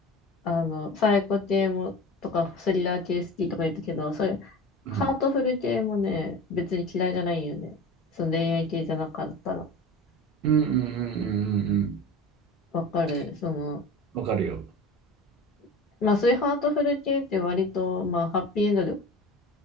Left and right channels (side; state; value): both; normal; correlation 0.34